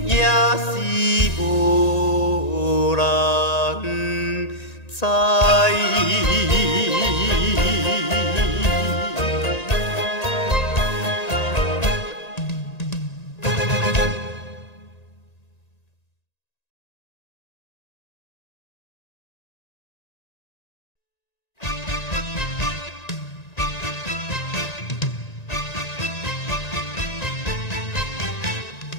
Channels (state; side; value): late; right; 1.9 ms